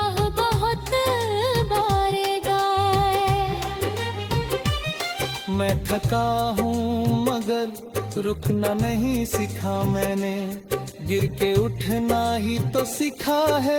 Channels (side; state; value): both; identical; correlation 1.00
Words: बहुत बारेगा। मैं थका हूँ मगर रुकना नहीं सीखा मैंने। गिर के उठना ही तो सीखा